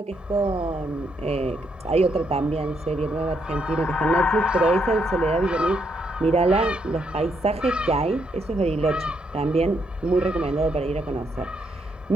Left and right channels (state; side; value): normal; both; correlation 0.76